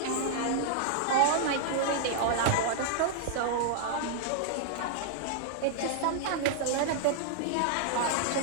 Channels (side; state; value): both; different; correlation -0.01